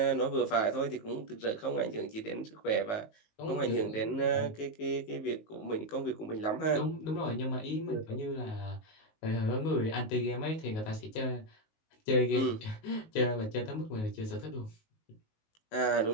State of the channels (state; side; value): late; right; 19 ms